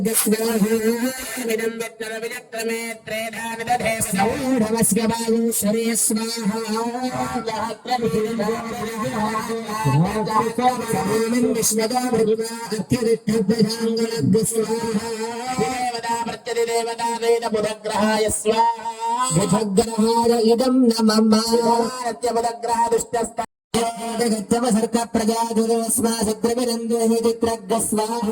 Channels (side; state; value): both; identical; correlation 1.00